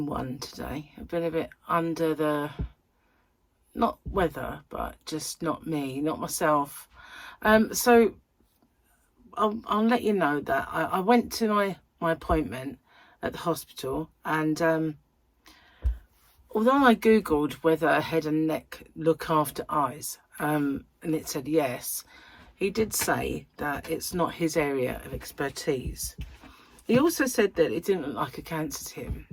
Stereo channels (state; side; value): identical; both; correlation 1.00